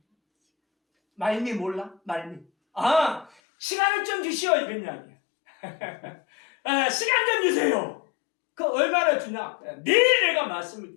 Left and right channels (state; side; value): drops out; right; at 3.3 s